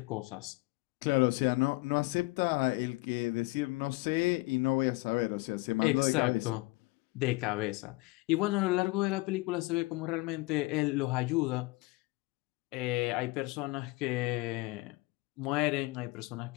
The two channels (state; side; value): quieter; right; 23.4 dB